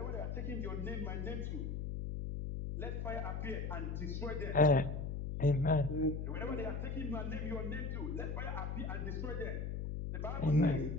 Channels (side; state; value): left; noise; hum, 3 dB below the sound